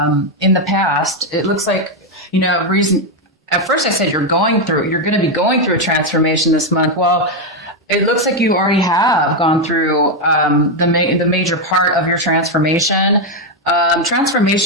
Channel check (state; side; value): normal; both; correlation 0.04